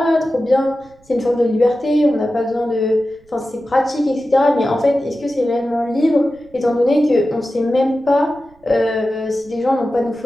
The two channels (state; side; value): noise; right; rumble, 30 dB below the sound